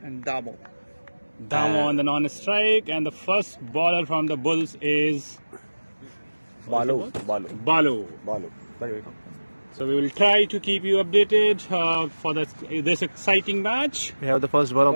And Damo. Damo on the non-strike, and the first bowler from the Bulls is Balu. Balu. Very good. So we will try to keep you updated for this exciting match. We have the first ball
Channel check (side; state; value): both; inverted; correlation -1.00